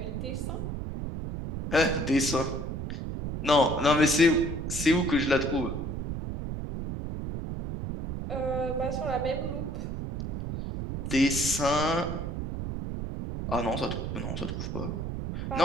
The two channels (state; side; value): noise; right; rumble, 4 dB below the sound